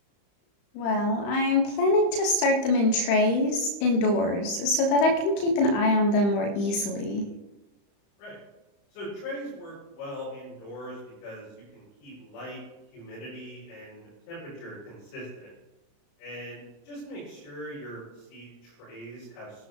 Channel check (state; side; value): late; right; 35 ms